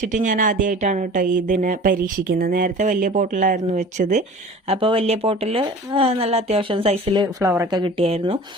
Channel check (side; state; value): both; normal; correlation 0.42